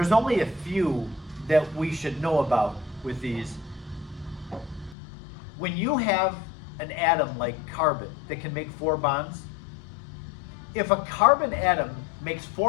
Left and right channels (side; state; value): right; drops out; at 5.0 s